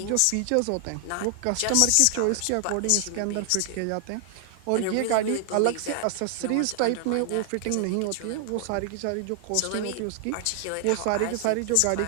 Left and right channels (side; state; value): both; different; correlation 0.00